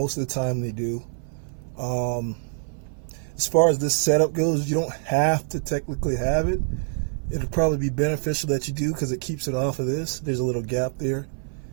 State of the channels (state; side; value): silent; left; 58 dB below the other